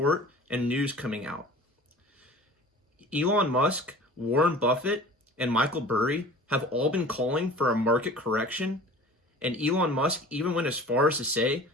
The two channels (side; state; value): both; normal; correlation 0.42